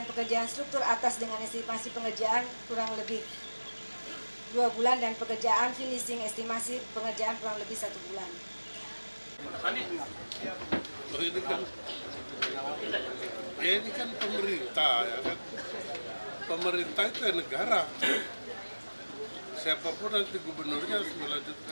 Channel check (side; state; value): both; inverted; correlation -1.00